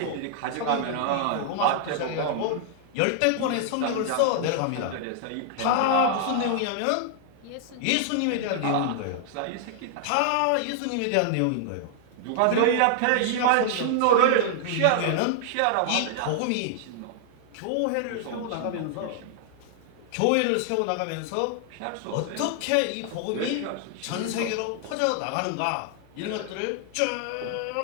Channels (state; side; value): different; both; correlation -0.01